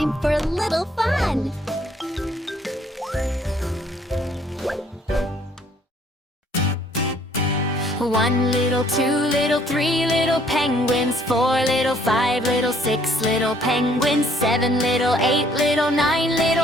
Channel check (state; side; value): normal; both; correlation 0.62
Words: for a little fun! One little, two little, three little penguins, four little, five little, six little penguins, seven little, eight little, nine